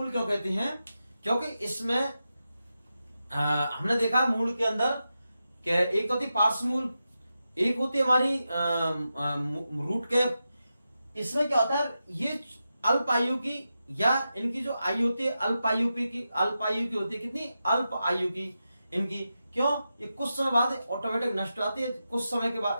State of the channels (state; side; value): inverted; both; correlation -0.90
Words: क्यों कहते हैं? क्योंकि इसमें हमने देखा मूल के अंदर क्या, एक तो होती पार्श्व मूल, एक होती है हमारी रूट कैप। इसमें क्या होता है? ये अल्प आयु की, या इनकी जो आयु होती है अल्प आयु की, अल्प आयु की होती है। कितनी? अल्प आयु की इनकी। क्यों? ये कुछ समय बाद ऑटोमेटिक नष्ट हो जाती है। कुछ समय के